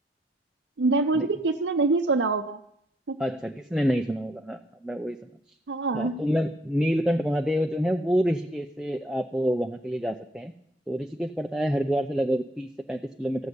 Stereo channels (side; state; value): both; normal; correlation 0.67